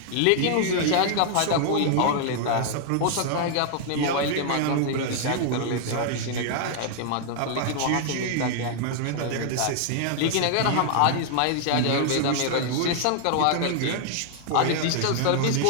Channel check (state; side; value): different; both; correlation -0.01